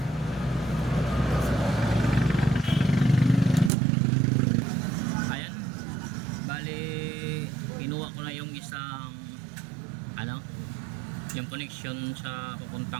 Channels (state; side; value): drops out; left; at 3.7 s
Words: Bali kinuha ko na yung isang ano yung connection sa